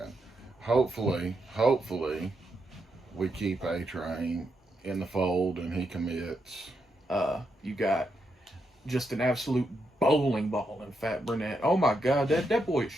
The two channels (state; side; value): normal; both; correlation 0.82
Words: hopefully, we keep A-Train in the fold and he commits. You got just an absolute bowling ball in Fat Burnett. Oh my God, that boy is